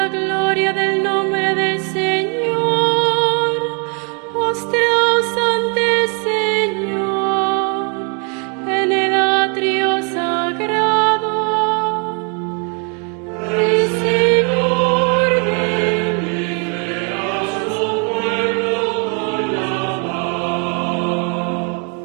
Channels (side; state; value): left; quieter; 36.8 dB